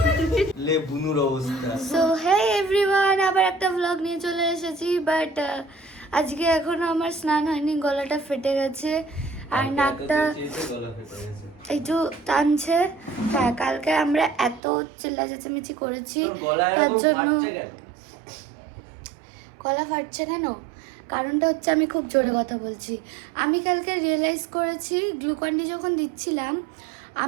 লে বুনুর অবস্থা। সো হে এভরিওয়ান, আবার একটা ব্লগ নিয়ে চলে এসেছি। বাট আজকে এখনো আমার স্নান হয়নি, গলাটা ফেটে গেছে আর নাকটা একটু টানছে। হ্যাঁ, কালকে আমরা এত চিল্লা চেঁচামেচি করেছি তার জন্য গলা ফাটছে কেন? কারণটা হচ্ছে আমি খুব জোরে কথা বলছি। আমি কালকে রিয়েলাইজ করেছি গ্লুকন্ডি যখন দিচ্ছিলাম,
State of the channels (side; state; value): left; drops out; at 14.6 s